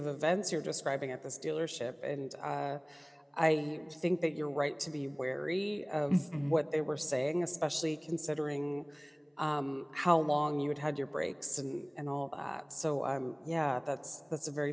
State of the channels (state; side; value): identical; both; correlation 1.00